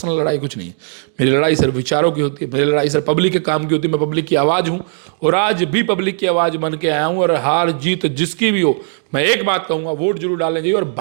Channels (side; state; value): left; silent; digital silence